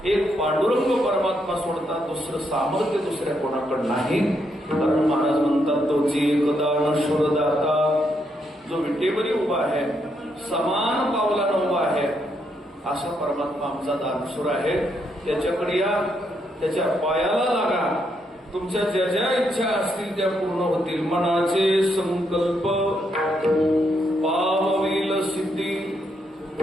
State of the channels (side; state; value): both; normal; correlation 0.77